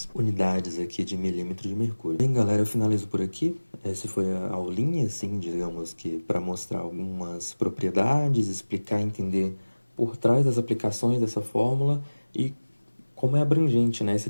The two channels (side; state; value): both; inverted; correlation -1.00